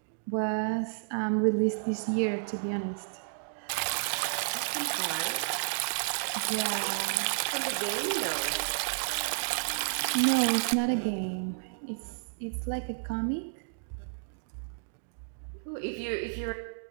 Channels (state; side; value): silent; left; digital silence